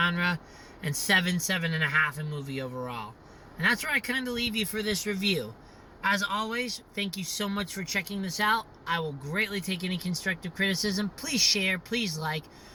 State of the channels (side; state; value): both; identical; correlation 1.00